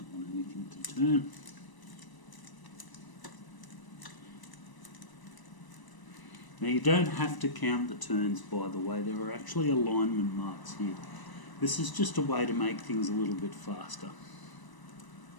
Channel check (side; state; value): right; late; 1.0 ms